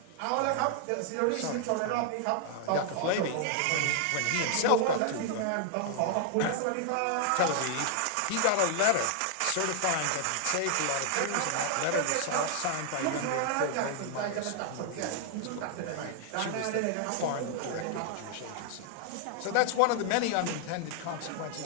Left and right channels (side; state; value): both; different; correlation 0.00